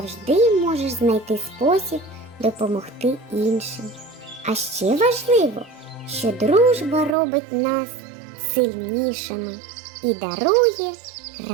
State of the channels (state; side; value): drops out; left; at 7.2 s